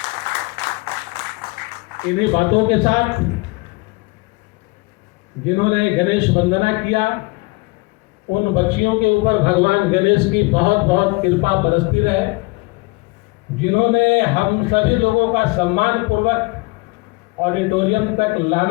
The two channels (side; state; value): right; quieter; 25.8 dB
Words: इन्हीं बातों के साथ जिन्होंने गणेश वंदना किया, उन बच्चियों के ऊपर भगवान गणेश की बहुत बहुत कृपा बरसती रहे। जिन्होंने हम सभी लोगों का सम्मान पूर्वक ऑडिटोरियम तक